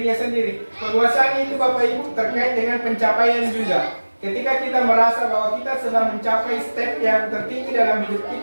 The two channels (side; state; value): both; inverted; correlation -1.00